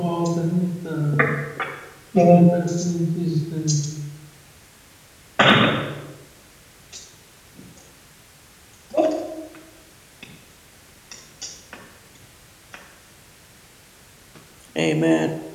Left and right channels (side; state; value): both; identical; correlation 1.00